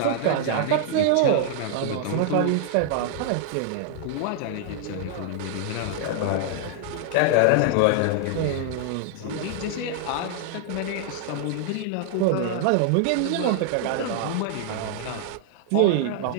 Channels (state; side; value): different; both; correlation -0.01